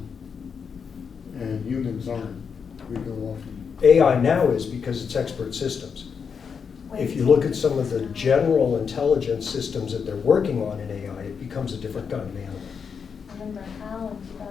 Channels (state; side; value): quieter; right; 6.3 dB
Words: and humans aren't. We go off and AI now is because it's expert systems. If you look at some of the general intelligence systems that they're working on in AI, it becomes a different kind of animal. Remember Hal in